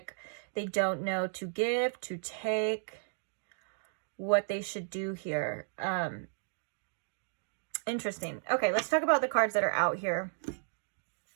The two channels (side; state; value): left; silent; digital silence